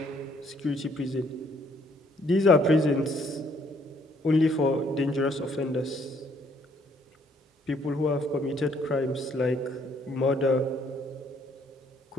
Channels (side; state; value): both; normal; correlation 0.66